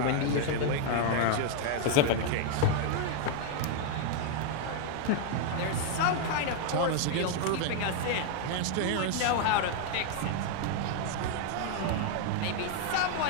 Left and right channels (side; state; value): both; different; correlation 0.00